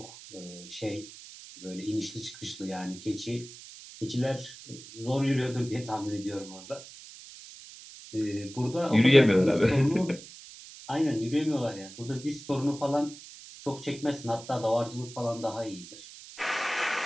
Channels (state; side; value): noise; right; hiss, 16 dB below the sound